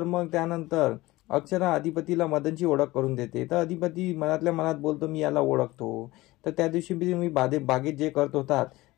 मग त्यानंतर अक्षरा अधिपतीला मदनची ओळख करून देते. तर अधिपती मनातल्या मनात बोलतो, मी याला ओळखतो. तर त्या दिवशी मी बागेत जे करत होतात.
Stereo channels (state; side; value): quieter; right; 19.3 dB